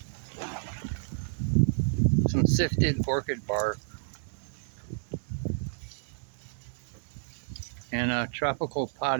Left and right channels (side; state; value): left; silent; digital silence